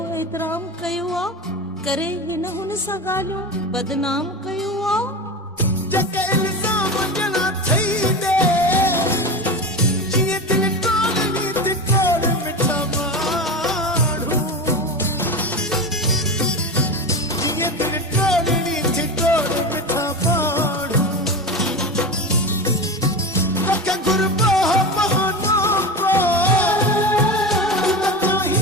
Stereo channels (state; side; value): normal; both; correlation 0.24